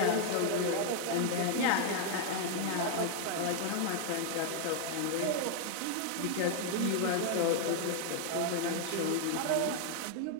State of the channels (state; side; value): different; both; correlation 0.00